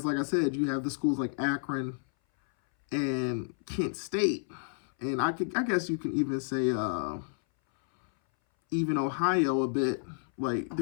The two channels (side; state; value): right; silent; 57 dB below the other